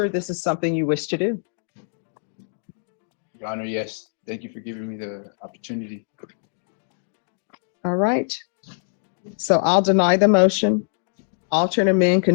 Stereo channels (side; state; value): right; silent; digital silence